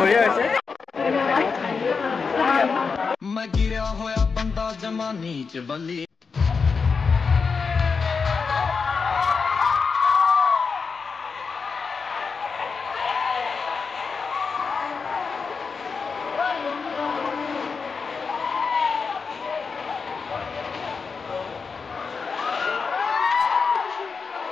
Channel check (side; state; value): right; quieter; 5.2 dB